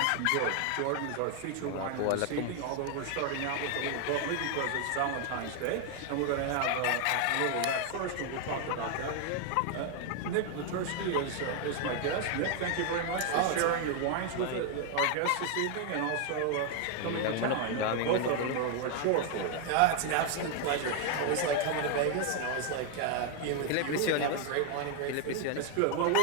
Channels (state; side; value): different; both; correlation 0.01